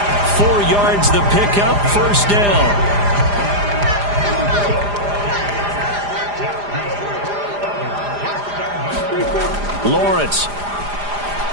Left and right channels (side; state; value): left; late; 4.9 ms